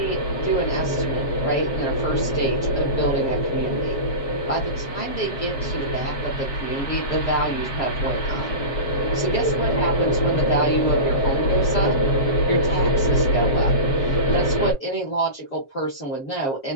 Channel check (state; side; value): late; right; 7.4 ms